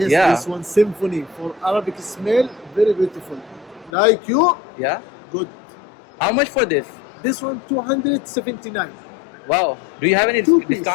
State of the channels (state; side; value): drops out; right; at 3.9 s